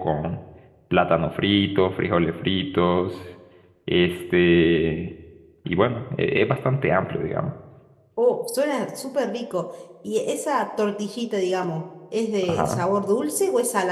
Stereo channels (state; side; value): identical; both; correlation 1.00